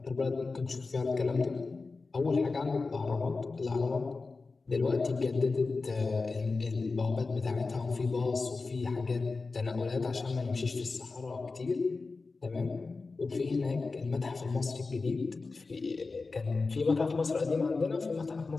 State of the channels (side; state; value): right; quieter; 4.0 dB